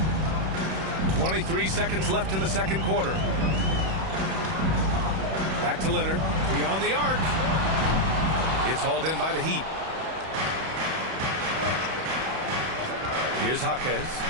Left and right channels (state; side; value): late; left; 31 ms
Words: 23 seconds left in the second quarter. Back to Leonard. Beyond the arc. It's hauled in by the Heat. Here's Jaquez.